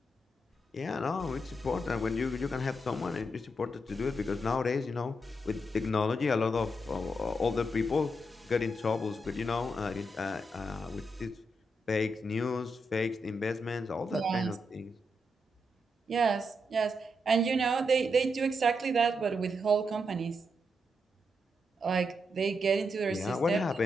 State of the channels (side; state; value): both; normal; correlation 0.82